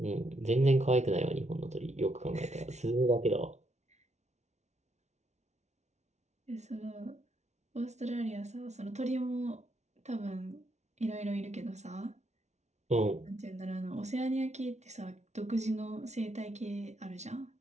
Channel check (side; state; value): left; late; 0.32 ms